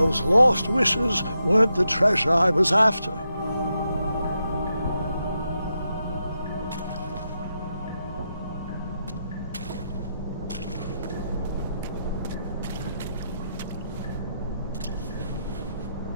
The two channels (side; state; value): both; inverted; correlation -0.85